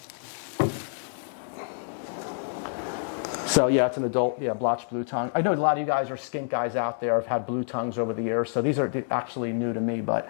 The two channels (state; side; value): silent; right; 60 dB below the other